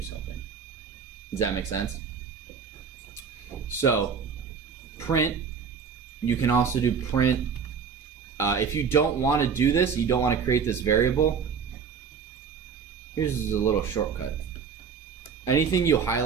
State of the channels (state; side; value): quieter; left; 6.3 dB